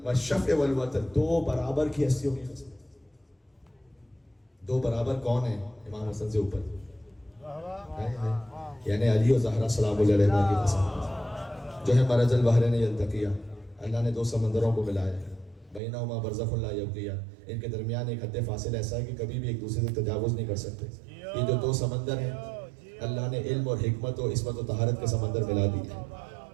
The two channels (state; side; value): drops out; left; at 15.8 s